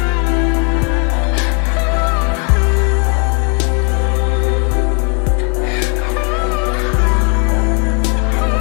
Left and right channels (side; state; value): right; quieter; 37.9 dB